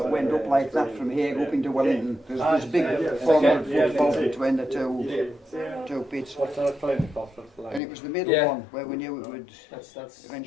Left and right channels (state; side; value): drops out; right; at 7.8 s